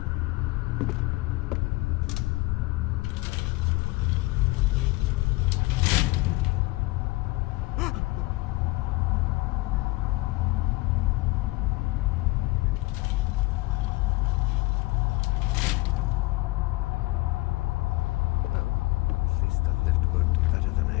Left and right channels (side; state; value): right; quieter; 21.7 dB